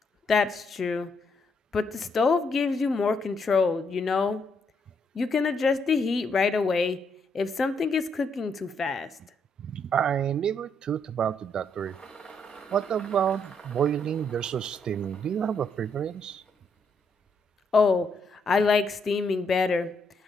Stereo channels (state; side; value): normal; both; correlation 0.74